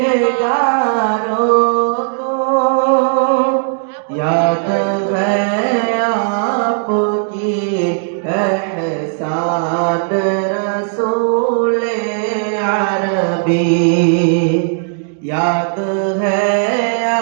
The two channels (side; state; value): left; silent; 66 dB below the other